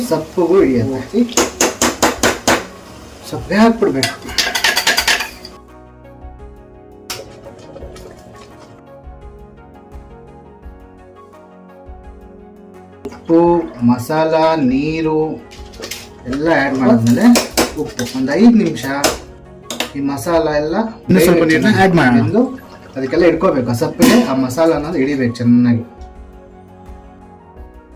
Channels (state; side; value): identical; both; correlation 1.00